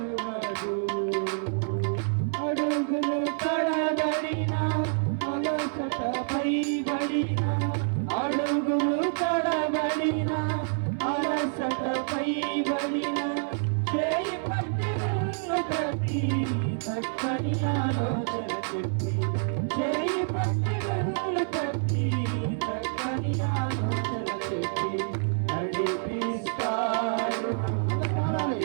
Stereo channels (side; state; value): left; silent; 60 dB below the other